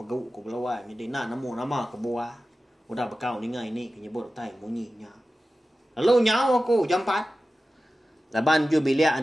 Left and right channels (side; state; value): both; normal; correlation 0.95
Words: ku belawai. Jadi nak nemu nama ke buah. Udah bekau ni ngai ni kenyebut tai munyinya. Lalu nyawa aku jam 4. Laban ju bilia